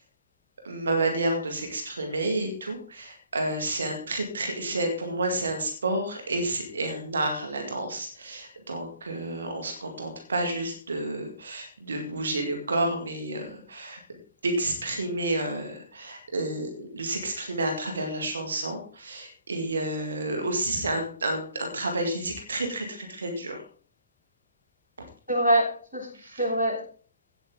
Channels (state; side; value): inverted; both; correlation -0.65